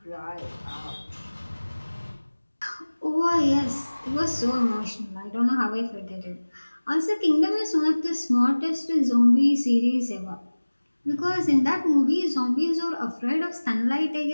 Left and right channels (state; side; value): inverted; both; correlation -1.00